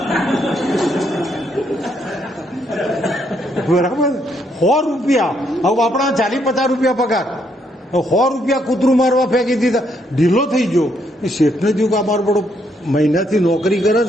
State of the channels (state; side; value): normal; both; correlation 0.74